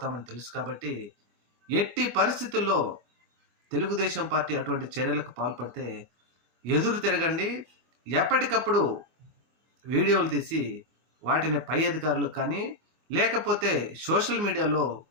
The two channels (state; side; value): late; left; 24 ms